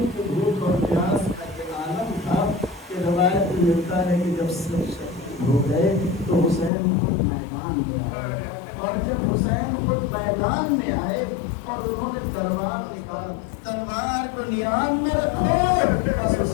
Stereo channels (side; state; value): right; drops out; at 6.7 s